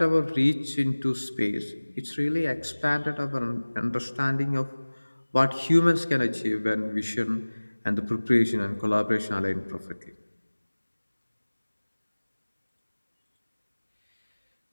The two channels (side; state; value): both; inverted; correlation -1.00